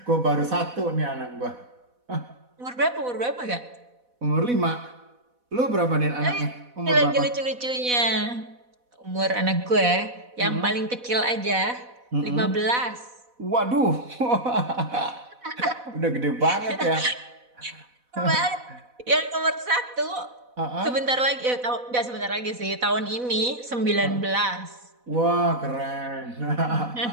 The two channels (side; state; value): left; late; 4.1 ms